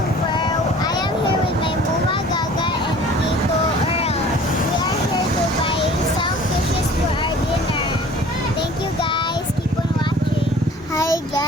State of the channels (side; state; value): both; normal; correlation 0.48